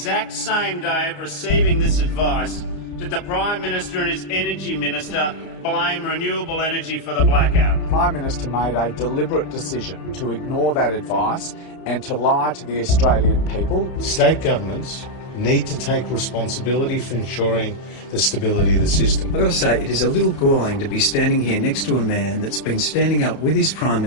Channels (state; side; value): late; right; 31 ms